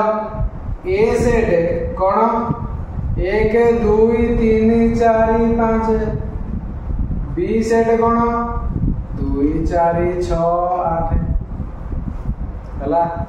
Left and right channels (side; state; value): both; identical; correlation 1.00